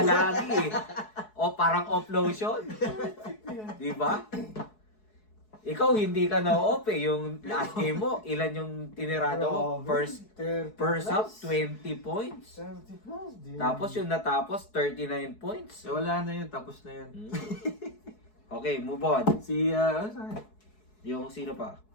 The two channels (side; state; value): right; late; 4.7 ms